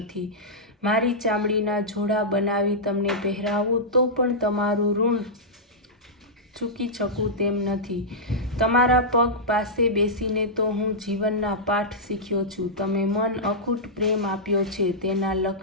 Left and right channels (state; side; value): normal; both; correlation -0.12